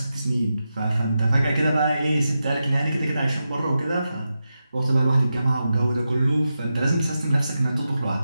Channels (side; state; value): both; inverted; correlation -0.90